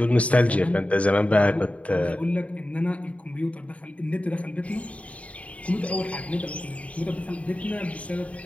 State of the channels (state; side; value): late; right; 0.066 ms